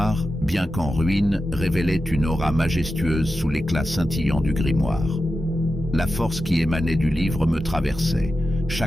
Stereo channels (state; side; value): normal; both; correlation 0.91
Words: bien qu'en ruine, révélait une aura majestueuse sous l'éclat scintillant du grimoire. La force qui émanait du livre me traversait,